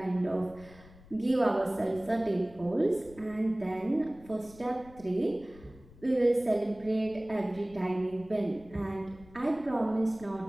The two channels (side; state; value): left; noise; rumble, 22 dB below the sound